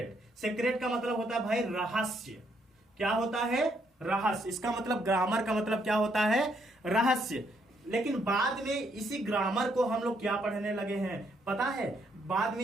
सीक्रेट का मतलब होता है भाई रहस्य। क्या होता है? रहस्य। इसका मतलब ग्रामर का मतलब क्या होता है? रहस्य। लेकिन बाद में इसी ग्रामर को हम लोग क्या पढ़ने लगे हैं पता है? बाद में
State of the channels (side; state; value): both; normal; correlation 0.73